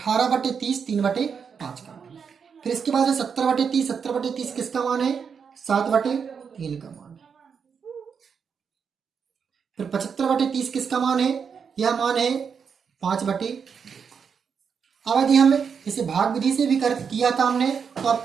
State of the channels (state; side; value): quieter; left; 6.5 dB